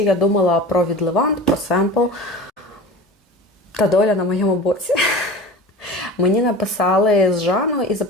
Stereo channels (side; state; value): both; normal; correlation 0.33